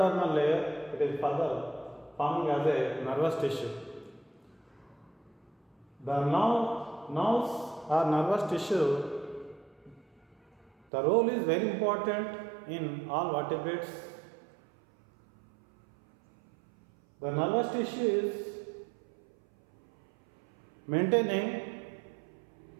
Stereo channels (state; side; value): drops out; left; at 10.9 s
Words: layer, it is further forming as a nervous tissue. The nerves or nervous tissue, the role is very important in all vertebrates. The nervous tissue is maintaining